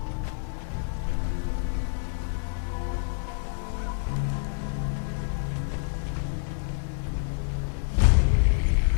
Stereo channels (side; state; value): right; silent; digital silence